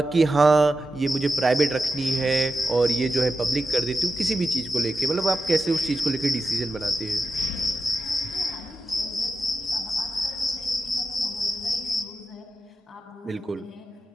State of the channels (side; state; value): both; normal; correlation 0.90